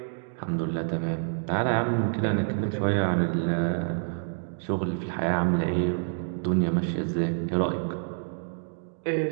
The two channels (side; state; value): left; silent; digital silence